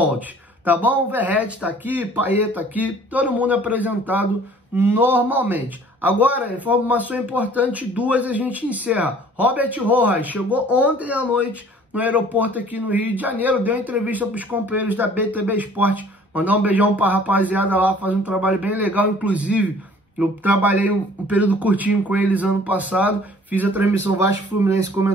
Tá bom? O Verratti tá aqui, Payet tá aqui, todo mundo é apresentado normalmente. Agora, informação importante, 2 a gente encerra. Robert Rojas chegou ontem à noite no aeroporto aqui no Rio de Janeiro, deu entrevista para os companheiros da BTB Esporte. Mandar um beijão para a rapaziada lá, faz um trabalho bem legal. Inclusive, eu trabalhei um período curtinho com eles ano passado. Fiz a transmissão Vasco Fluminense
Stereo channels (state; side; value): normal; both; correlation 0.52